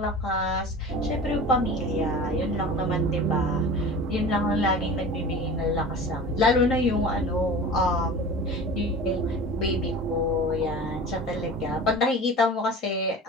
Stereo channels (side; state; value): both; normal; correlation 0.36